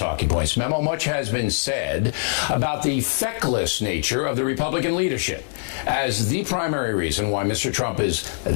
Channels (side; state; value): right; silent; 56 dB below the other